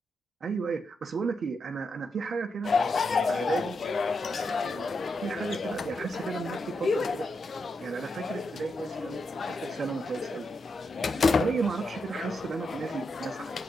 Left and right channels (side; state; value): both; normal; correlation 0.84